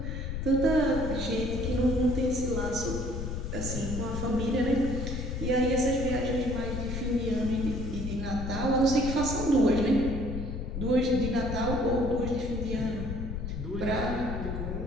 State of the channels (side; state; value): left; noise; rumble, 4 dB below the sound